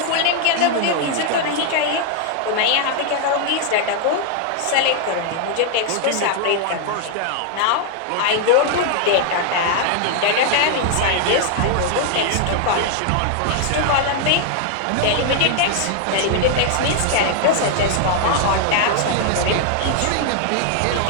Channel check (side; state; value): both; different; correlation 0.00